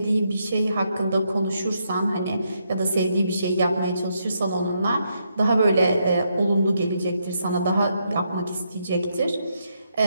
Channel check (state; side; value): inverted; both; correlation -0.78